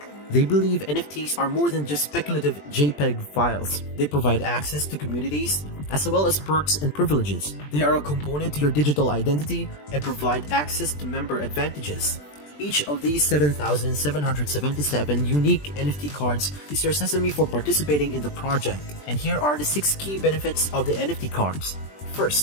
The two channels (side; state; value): right; late; 20 ms